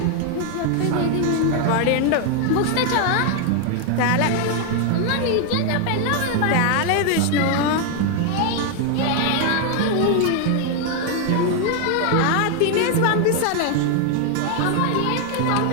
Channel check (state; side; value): different; both; correlation 0.01